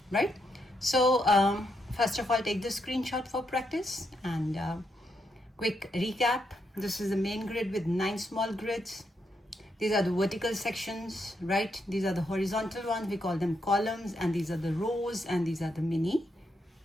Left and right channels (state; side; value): normal; both; correlation 0.80